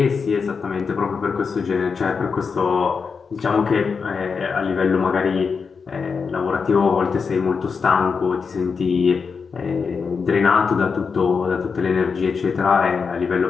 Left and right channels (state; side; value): quieter; right; 5.4 dB